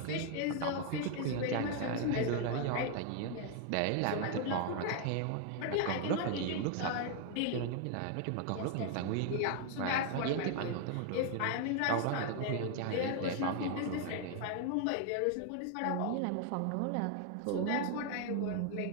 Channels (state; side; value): different; both; correlation 0.00